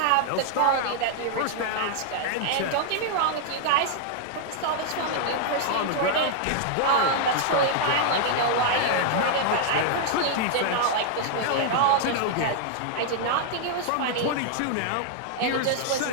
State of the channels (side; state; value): both; different; correlation 0.00